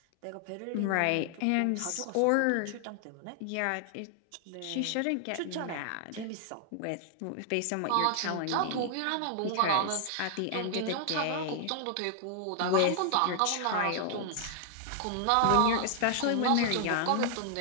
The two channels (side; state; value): both; different; correlation 0.00